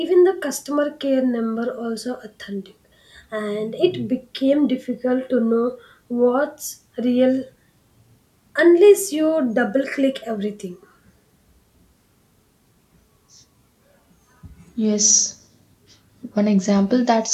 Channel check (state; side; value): identical; both; correlation 1.00